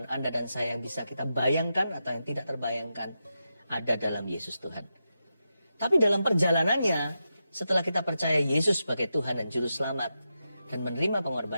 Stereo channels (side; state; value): both; inverted; correlation -0.88